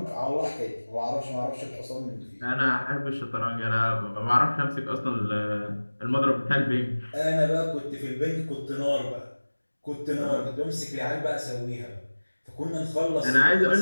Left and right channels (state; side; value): inverted; both; correlation -1.00